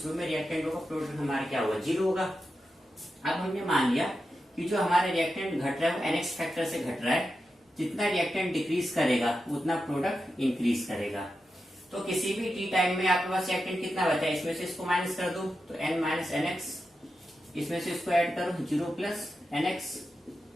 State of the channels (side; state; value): both; normal; correlation 0.89